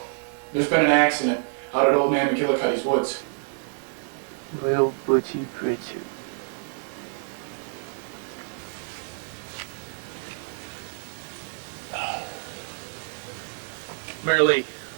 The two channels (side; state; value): left; silent; 60 dB below the other